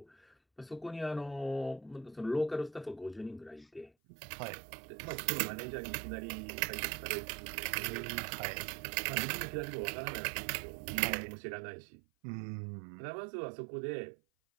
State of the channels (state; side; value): drops out; left; at 3.9 s